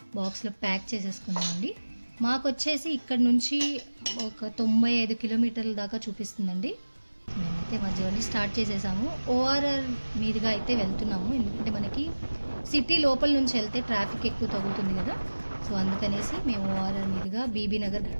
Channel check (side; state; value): both; inverted; correlation -1.00